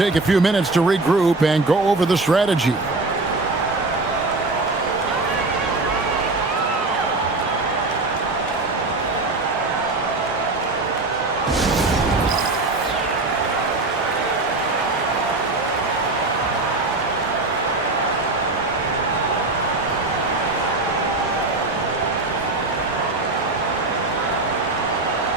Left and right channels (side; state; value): left; quieter; 3.3 dB